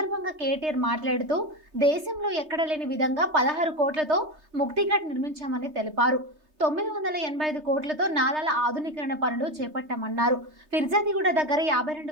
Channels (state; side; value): late; left; 3.3 ms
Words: కేటీఆర్ మాట్లాడుతూ దేశంలో ఎక్కడ లేని విధంగా 16 కోట్లతో ముక్తిఘాట్ నిర్మించామని తెలిపారు. 985 కోట్లతో నాలాల ఆధునీకరణ పనులు చేపట్టామన్నారు. ఫిర్జాదిగూడ దగ్గర